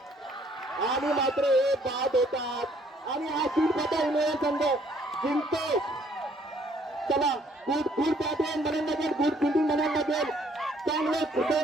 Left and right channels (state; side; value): normal; both; correlation 0.63